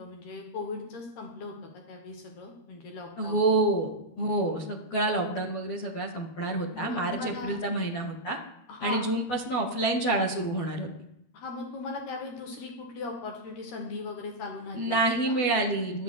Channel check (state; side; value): late; right; 12 ms